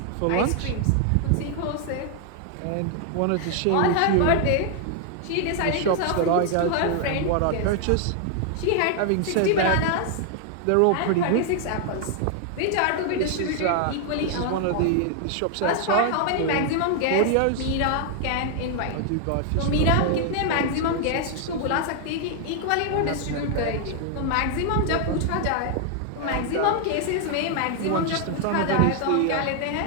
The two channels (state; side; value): different; both; correlation 0.00